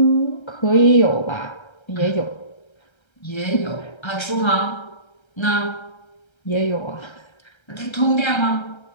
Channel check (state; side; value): late; right; 1.3 ms